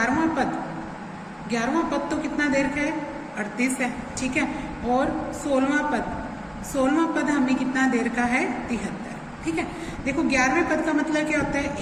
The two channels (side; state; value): both; identical; correlation 1.00